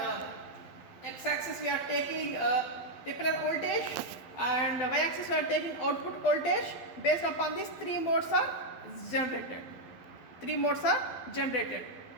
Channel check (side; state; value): right; late; 12 ms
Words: x-axis we are taking repeller voltage, and y-axis we are taking output voltage. Based upon these 3 modes are generated. 3 modes are generated.